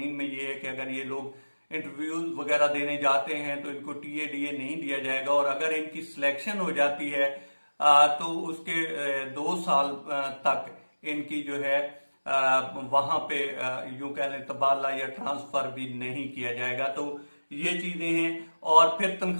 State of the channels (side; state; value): both; inverted; correlation -1.00